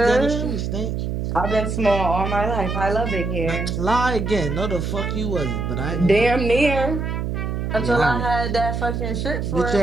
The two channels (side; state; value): right; noise; hum, 2 dB below the sound